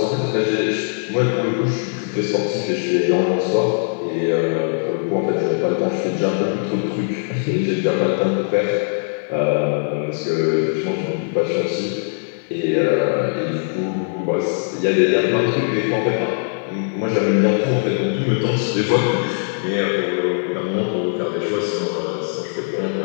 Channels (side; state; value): right; silent; 65 dB below the other